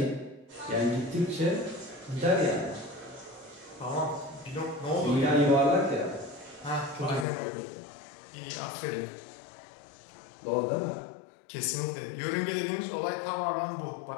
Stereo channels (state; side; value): drops out; right; at 7.2 s